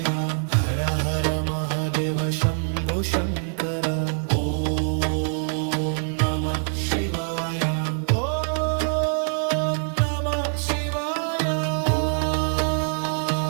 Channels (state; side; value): silent; left; 59 dB below the other